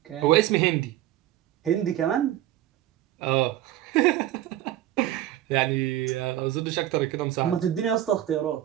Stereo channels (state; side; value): quieter; left; 13.3 dB